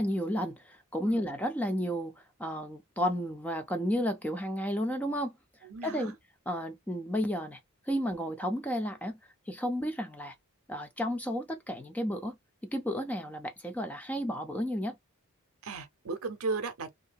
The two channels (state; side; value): normal; both; correlation 0.70